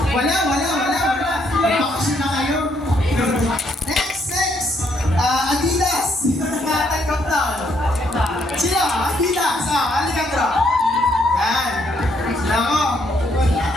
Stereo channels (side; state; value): both; normal; correlation 0.72